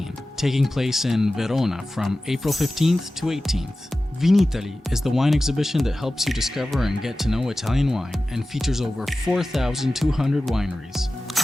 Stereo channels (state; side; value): normal; both; correlation 0.95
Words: taking place in Verona from April 15th to 18th. Vinitaly is the wine exhibition that helps you discover and get to know Italian wine and features over 4,200 wineries.